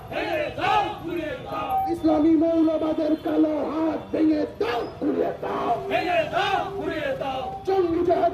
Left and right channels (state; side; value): identical; both; correlation 1.00